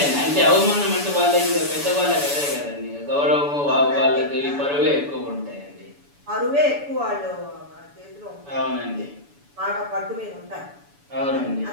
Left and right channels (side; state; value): left; late; 7.0 ms